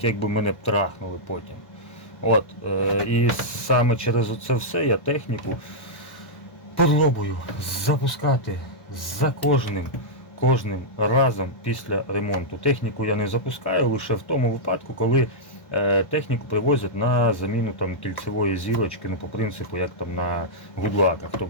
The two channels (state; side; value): late; right; 1.3 ms